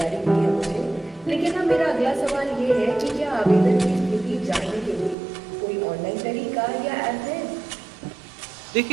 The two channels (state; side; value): drops out; left; at 5.2 s